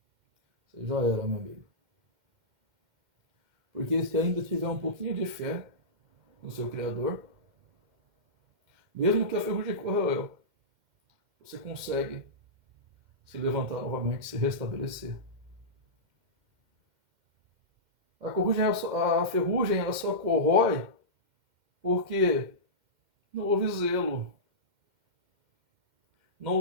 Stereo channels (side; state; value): left; late; 2.1 ms